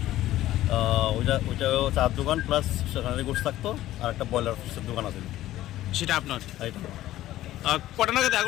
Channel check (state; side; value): quieter; right; 14.5 dB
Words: ওইটাও চার দোকান, প্লাস সেখানে গোস থাকতো। আর একটা ব্রয়লার ফিশের দোকান আছে, সেটা আপনার। এইটা কটা নাগাদ